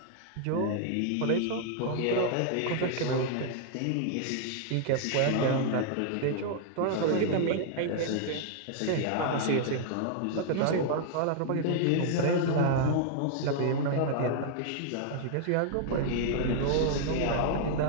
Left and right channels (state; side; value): different; both; correlation -0.01